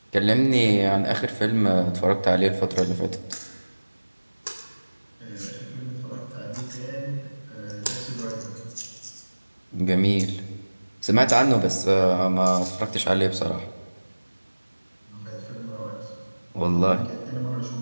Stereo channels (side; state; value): both; inverted; correlation -1.00